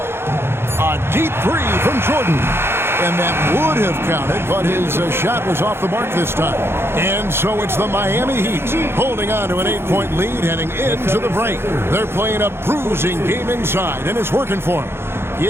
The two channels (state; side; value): late; left; 0.11 ms